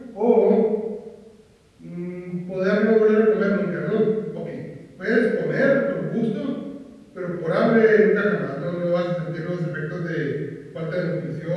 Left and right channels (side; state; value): both; identical; correlation 1.00